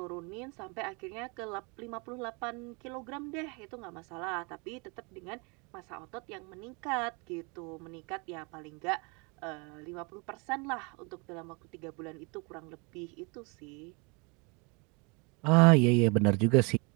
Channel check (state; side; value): quieter; left; 31.3 dB